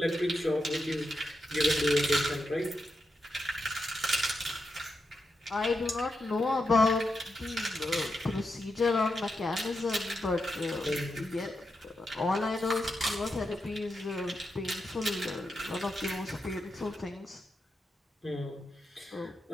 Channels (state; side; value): normal; both; correlation 0.86